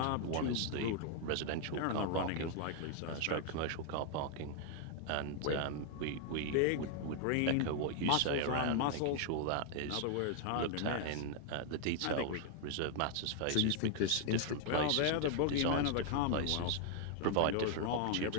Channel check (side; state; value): both; different; correlation 0.00